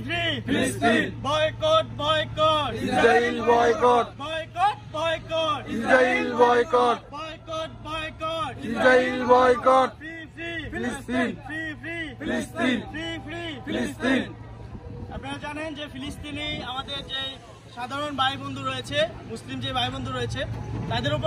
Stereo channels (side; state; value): both; identical; correlation 1.00